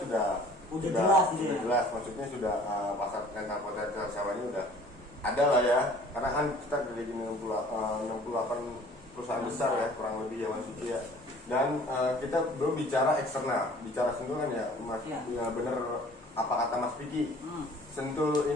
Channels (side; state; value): both; normal; correlation 0.51